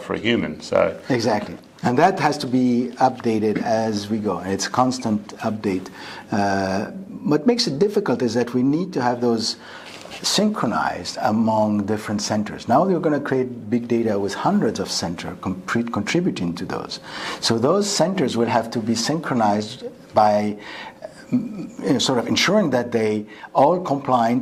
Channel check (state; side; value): identical; both; correlation 1.00